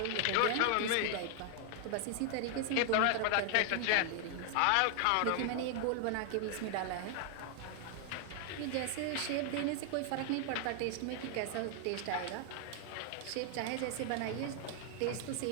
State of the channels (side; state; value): both; different; correlation 0.00